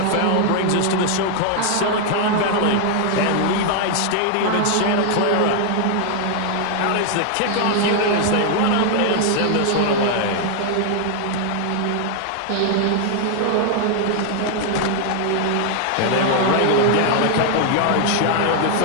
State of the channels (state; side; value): different; both; correlation 0.00